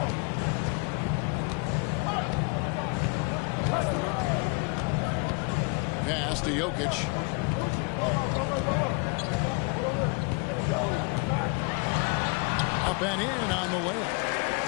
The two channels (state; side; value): quieter; right; 32.9 dB